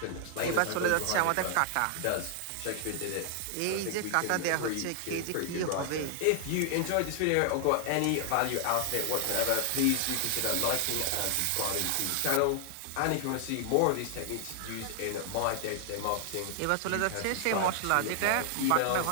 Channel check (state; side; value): different; both; correlation 0.00